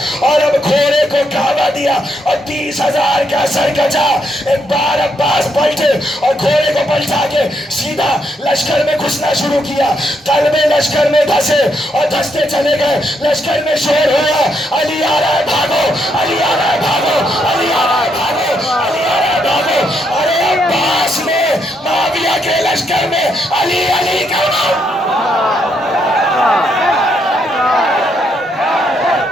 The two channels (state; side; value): normal; both; correlation 0.77